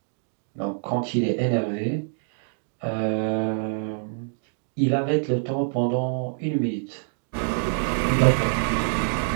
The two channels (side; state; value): left; silent; digital silence